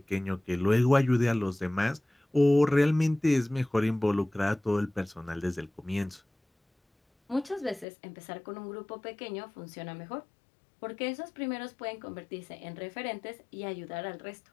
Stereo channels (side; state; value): right; drops out; at 7.9 s